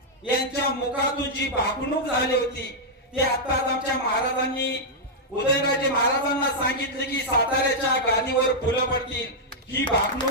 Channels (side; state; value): both; normal; correlation -0.06